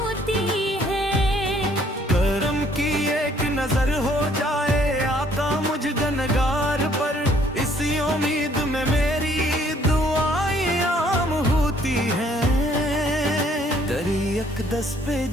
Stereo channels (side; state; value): both; normal; correlation 0.63